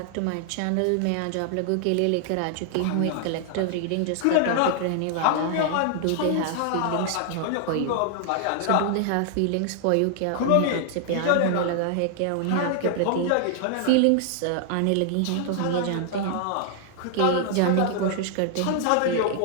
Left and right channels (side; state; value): both; different; correlation 0.00